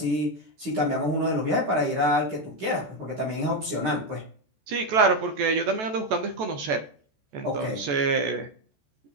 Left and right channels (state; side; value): late; left; 14 ms